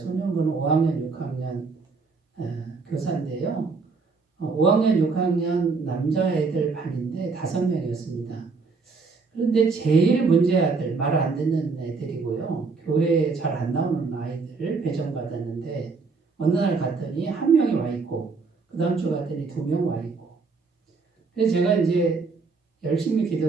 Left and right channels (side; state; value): left; quieter; 4.5 dB